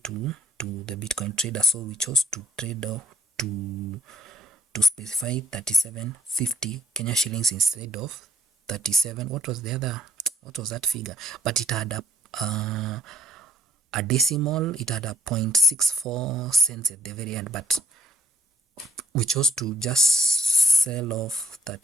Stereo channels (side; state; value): both; normal; correlation 0.65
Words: the Bitcoin trader. So we chose to trade off to specify 3750 Kenya shillings instead of 37. What was that figure? But it had a decimal, it had a 0.64 cents at the very end, but we chose to just sell off